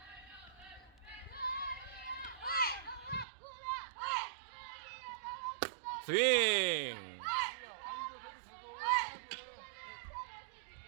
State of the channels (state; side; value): drops out; left; at 3.2 s